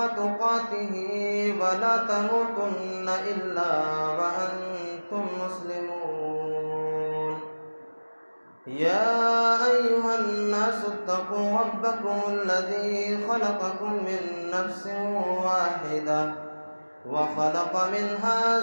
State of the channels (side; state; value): both; inverted; correlation -1.00